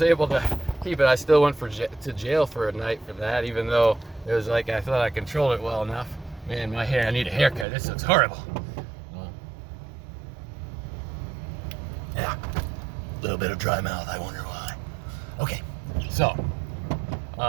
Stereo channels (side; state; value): left; drops out; at 7.7 s